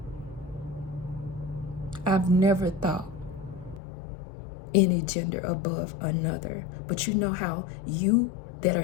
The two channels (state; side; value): drops out; right; at 3.8 s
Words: I've never thought any gender above another. But you know how you that are